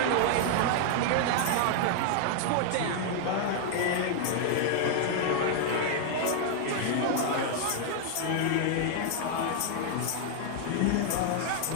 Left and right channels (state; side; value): different; both; correlation 0.00